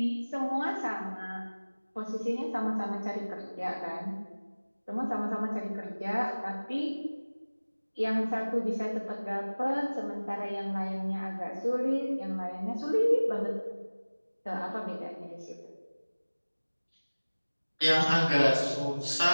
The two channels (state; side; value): inverted; both; correlation -1.00